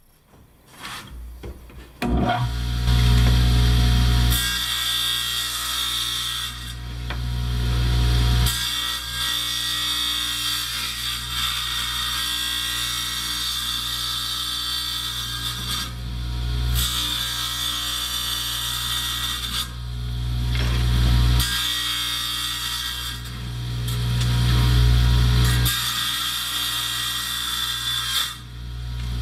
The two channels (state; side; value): identical; both; correlation 1.00